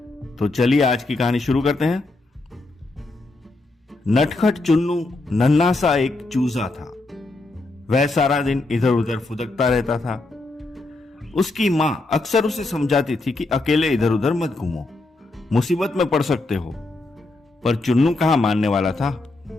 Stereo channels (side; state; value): right; quieter; 3.0 dB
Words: तो चलिए आज की कहानी शुरू करते हैं। नटखट चुन्नू नन्हा सा एक चूजा था। वह सारा दिन इधर उधर फुदकता रहता था। उसकी मां अक्सर उसे समझाती थी कि अकेले इधर उधर मत घूमो, मुसीबत में पड़ सकते हो, पर चुन्नू कहां मानने वाला था।